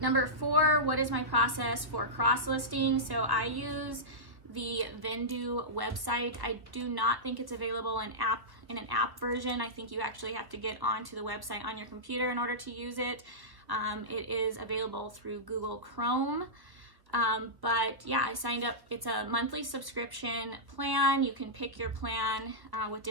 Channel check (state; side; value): late; left; 1.3 ms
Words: Number 4, what is my process for cross-listing? So I use the Vendu website. I do not think it's available in an app version. I think you actually have to get onto the website on your computer in order to use it. It is available through Google Chrome. But yeah, I signed up. It's a monthly subscription plan. You can pick your plan with